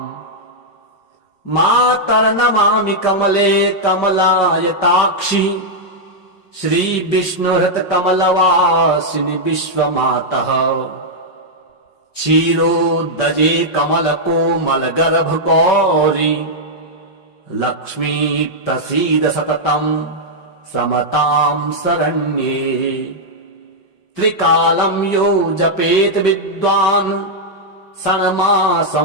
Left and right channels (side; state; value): right; late; 5.5 ms